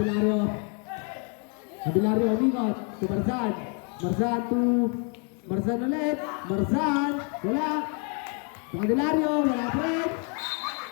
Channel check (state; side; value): quieter; right; 38.5 dB